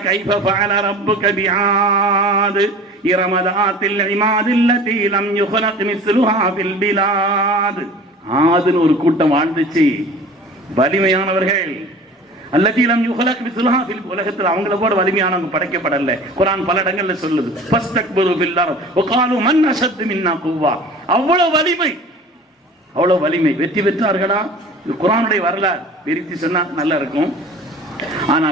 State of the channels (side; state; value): both; normal; correlation 0.42